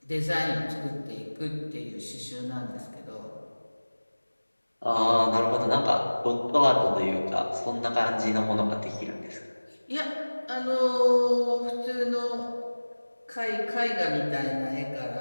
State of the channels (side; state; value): both; inverted; correlation -1.00